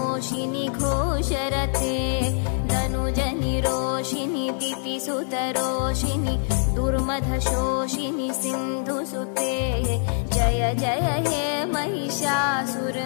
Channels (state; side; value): silent; right; 62 dB below the other